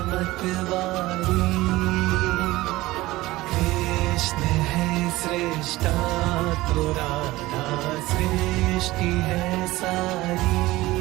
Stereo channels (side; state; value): left; quieter; 18.5 dB